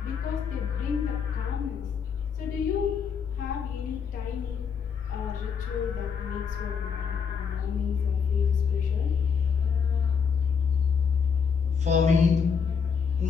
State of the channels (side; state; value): right; quieter; 6.3 dB